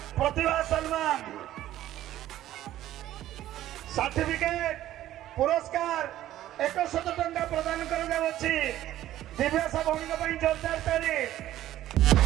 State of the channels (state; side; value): quieter; left; 13.4 dB